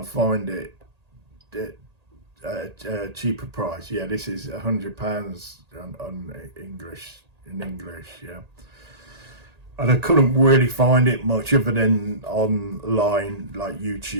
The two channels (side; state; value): left; late; 1.8 ms